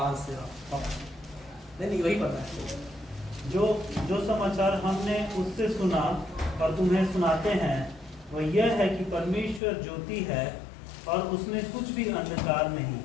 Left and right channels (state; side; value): drops out; right; at 9.6 s